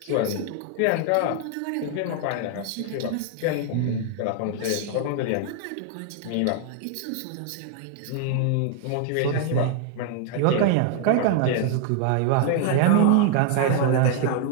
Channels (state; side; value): different; both; correlation 0.00